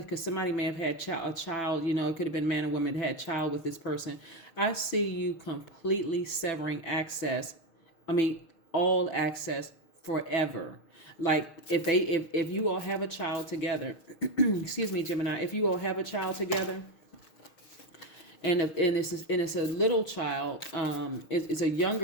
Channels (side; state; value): right; late; 6.4 ms